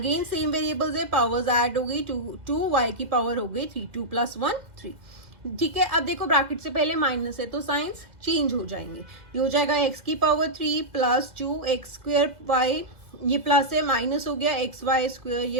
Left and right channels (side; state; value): left; late; 2.0 ms